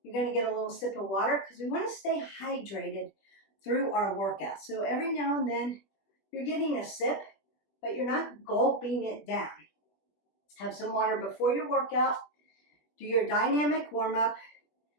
you're going to get a little sip of water because we want to stay hydrated through our workout. So every now and then, you're getting a sip, but you're not gulping it down. Have some water before your workout. Do your dynamic warm-up.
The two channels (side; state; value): right; late; 20 ms